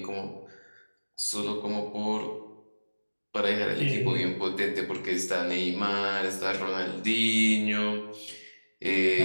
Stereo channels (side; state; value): both; inverted; correlation -1.00